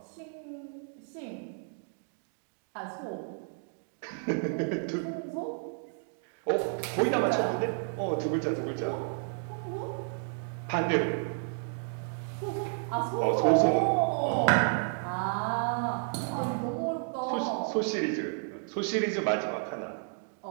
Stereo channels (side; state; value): left; silent; 57 dB below the other